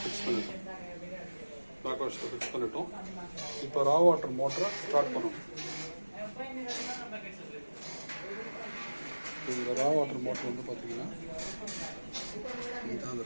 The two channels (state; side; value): inverted; both; correlation -1.00